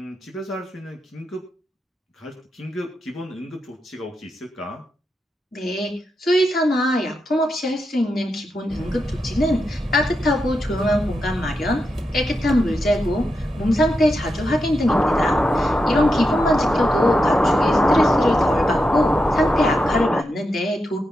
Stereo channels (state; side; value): normal; both; correlation 0.86